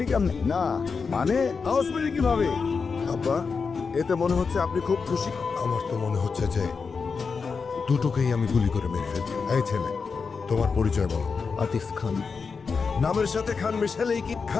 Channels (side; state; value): right; quieter; 5.1 dB